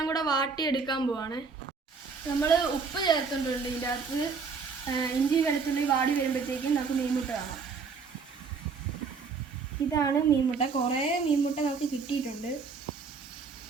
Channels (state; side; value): quieter; left; 5.1 dB